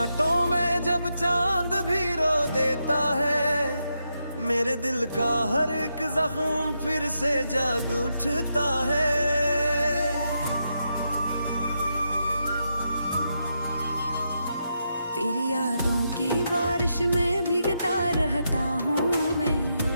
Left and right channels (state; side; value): inverted; both; correlation -0.83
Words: में जब चांद भी रो देता है, मेरे दिल का हर एक जख्म फिर से जाग उठता है। तेरी यादों की बारिश में भीगता रहता हूँ मैं,